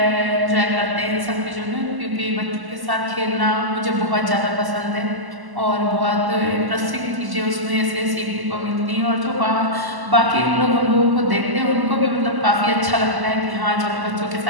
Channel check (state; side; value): late; left; 1.0 ms